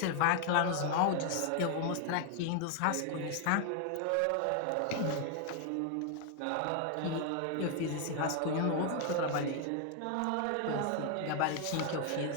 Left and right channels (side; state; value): both; different; correlation 0.00